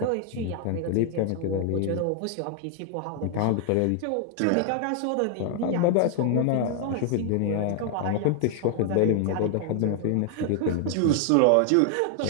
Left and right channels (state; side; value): different; both; correlation 0.00